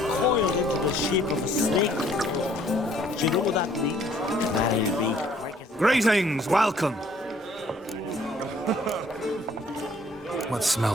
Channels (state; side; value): normal; both; correlation 0.60